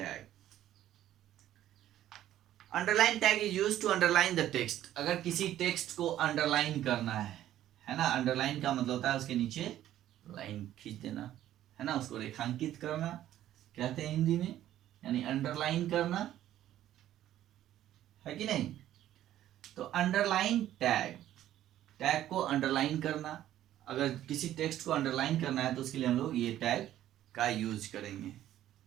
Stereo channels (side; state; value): left; quieter; 12.6 dB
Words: Underline tag is used to underline the text. अगर किसी टेक्स्ट को अंडरलाइन करना है ना, अंडरलाइन का मतलब होता है उसके नीचे लाइन खींच देना, है ना, उसको रेखांकित करना कहते हैं हिंदी में, यानी अंडरलाइन करना, है कि नहीं। तो अंडरलाइन टैग, टैग को अंडरलाइन करना, अगर किसी टेक्स्ट को अंडरलाइन करना है तो उसके लिए हम लोग ये टैग का यूज करेंगे,